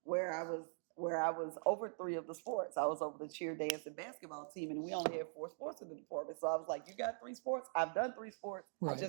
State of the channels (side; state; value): left; silent; digital silence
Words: where I was over 3 of the sports. I was over the cheer, dance, and basketball team, and we only had 4 sports in the department. So I was like, you got 3 sports? I've done 3 sports. Right. I